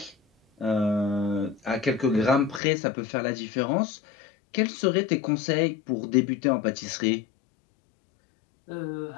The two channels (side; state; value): right; drops out; at 2.6 s